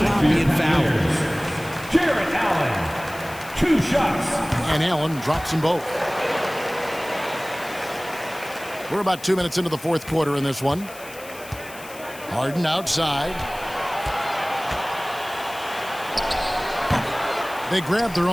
and foul. Jared Allen, 2 shots. And Allen drops them both. We're about 2 minutes into the fourth quarter in this one. Harden outside. They grab their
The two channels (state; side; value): noise; left; hiss, 17 dB below the sound